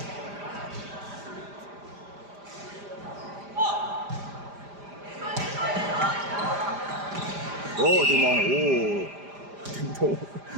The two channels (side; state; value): left; late; 5.0 ms